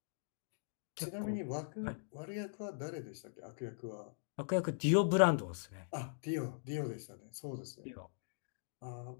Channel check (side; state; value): right; silent; digital silence